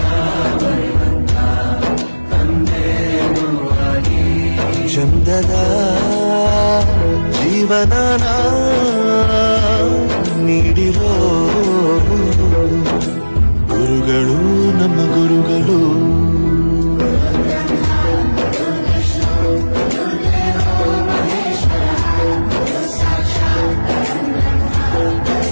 ಚಂದದ ಜೀವನನ ನೀಡಿರೋ ಗುರುಗಳು ನಮ್ಮ ಗುರುಗಳು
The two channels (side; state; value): both; inverted; correlation -1.00